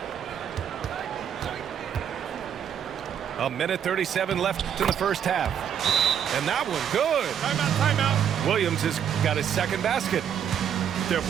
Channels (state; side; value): quieter; left; 8.7 dB